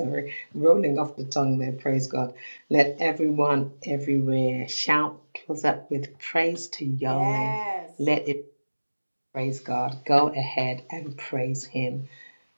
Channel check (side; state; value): both; inverted; correlation -1.00